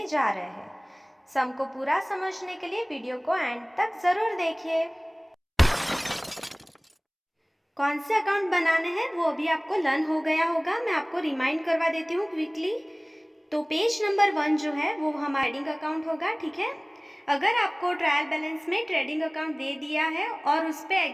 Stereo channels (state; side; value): identical; both; correlation 1.00